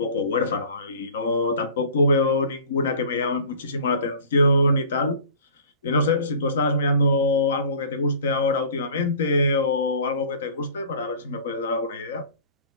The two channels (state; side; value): inverted; both; correlation -0.44